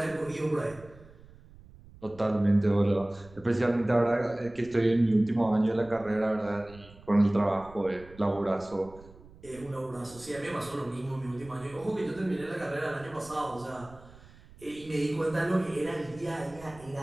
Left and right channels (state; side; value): noise; right; rumble, 22 dB below the sound